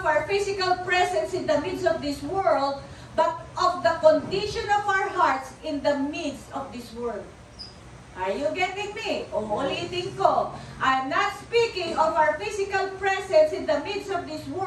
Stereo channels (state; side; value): identical; both; correlation 1.00